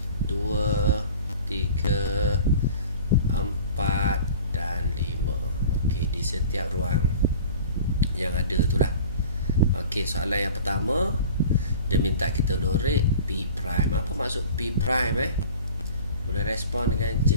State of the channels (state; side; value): inverted; both; correlation -0.42